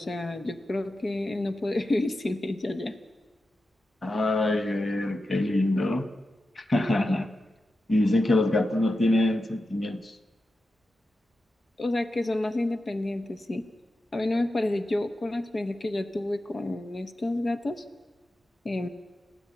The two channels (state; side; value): normal; both; correlation 0.91